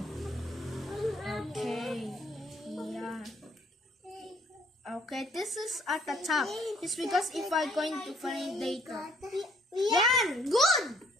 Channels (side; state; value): both; normal; correlation 0.63